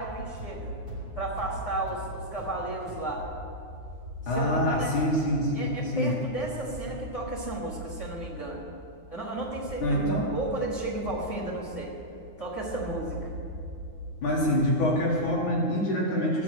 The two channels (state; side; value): late; right; 9.6 ms